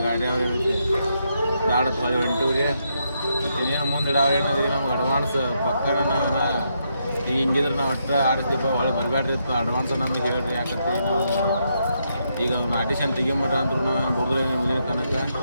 ಗಾಡಿ ಅವ್ರು ಏನೈತಿ ಬ್ಯಾಡತ್ ಹೊಳೆ ಹೊಂಟಿವ್ರಿ. ಮತ್ತು ಇನ್ನೇನು ಮುಂದೆ ಅವ್ರು ಏನಾದ್ರಿ ನಮ್ಗೆ ಅಡ್ವಾನ್ಸ್ ಪಕ್ಕನ ನಾವು ಈಗ ಹಿಂಗಿದ್ರೆ ನಾವು ಒಟ್ಟು ಆಡಿಸ್ತೀವಿ ಹೊಳೆ ಬರಬೇಡ್ರಿ ಇತ್ತು ಅಡ್ವಾನ್ಸ್ ನಮಗೆ ಹೇಳ್ರಿ. ಯಾಕಂತ ನಾವು ಈಗ ಅವ್ನು ಆಡಿಷನ್ ತೆಗಿಮಟ್ಟ ಅಂದ್ರು ನಾವು ಬುಡ್ದ್ರೆ ಮುಂದಿನ ತನಕ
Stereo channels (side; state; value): both; inverted; correlation -0.79